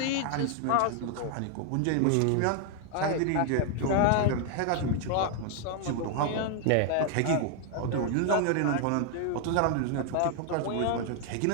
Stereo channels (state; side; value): different; both; correlation 0.00